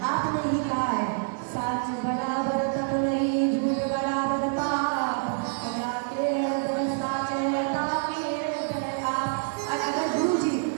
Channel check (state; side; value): silent; left; digital silence